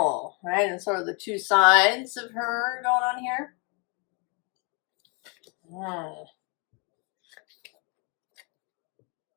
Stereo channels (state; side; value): quieter; right; 32.8 dB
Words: right, and sort of the two sides of her going on here.